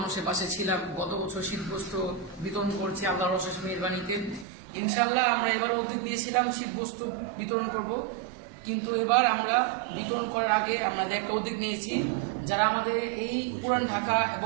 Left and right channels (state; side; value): drops out; left; at 4.5 s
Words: পাশে ছিলাম। গত বছর শীতবস্ত্র বিতরণ করছি আল্লাহর অশেষ মেহেরবানিতে। ইনশাল্লাহ আমরা এবার উদ্যোগ নিয়েছিলাম শীতবস্ত্র বিতরণ করব, কিন্তু এবার আমরা বিতরণ করার আগে আমাদের একটা উদ্যোগ নিয়েছি, যারা আমাদের এই পুরান ঢাকা